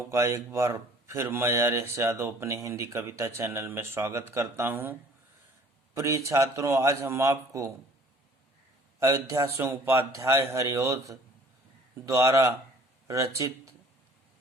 का एक बार फिर मैं आर्यश यादव अपने हिंदी कविता चैनल में स्वागत करता हूं। प्रिय छात्रों, आज हम आपको अयोध्या सिंह उपाध्याय हरिऔध द्वारा रचित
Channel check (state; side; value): normal; both; correlation 0.53